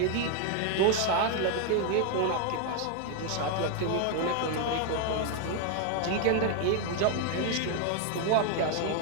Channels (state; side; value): different; both; correlation 0.01